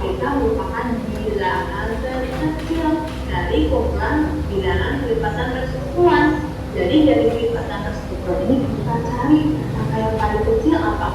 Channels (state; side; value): identical; both; correlation 1.00